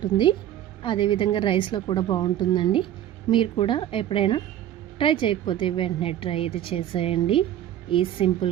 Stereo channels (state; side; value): quieter; left; 11.7 dB